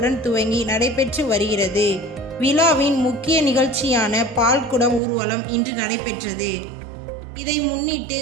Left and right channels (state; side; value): drops out; left; at 5.0 s